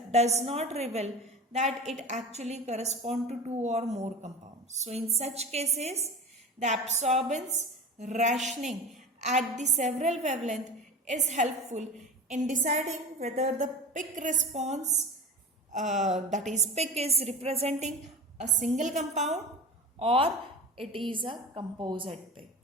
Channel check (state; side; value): normal; both; correlation 0.31